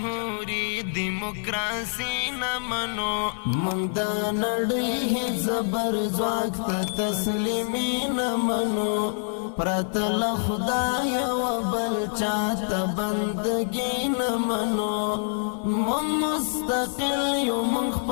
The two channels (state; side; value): silent; right; 58 dB below the other